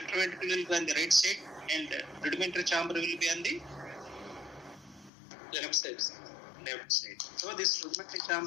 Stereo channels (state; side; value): drops out; right; at 5.1 s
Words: ventricle will be on the right side and rudimentary chamber will be on the Left side, sir. left side. So this rudimentary